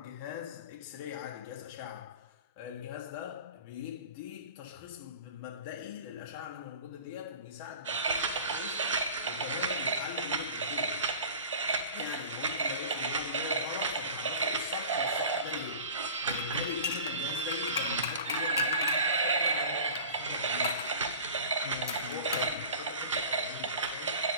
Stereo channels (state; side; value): inverted; both; correlation -0.40